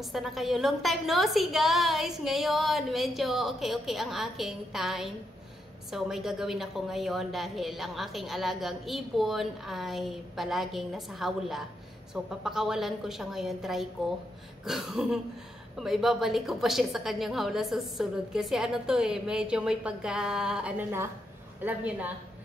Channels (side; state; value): both; normal; correlation 0.81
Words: na kayo? Long time no see guys! Ngayon, medyo okay ang aking time. So, may gagawin ako ngayon dahil ang aking alagang ibon ay palaging nasa hawla. So, papakawalan ko siya ngayon. Try ko kung maibabalik ko pa siya sa kanyang hawla sa susunod. Kasi ano to medyo may pagka, alam nyo na.